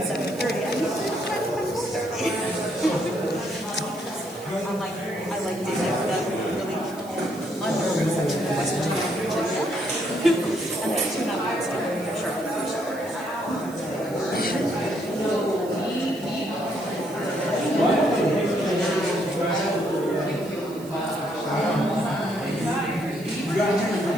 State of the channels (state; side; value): noise; right; hiss, 20 dB below the sound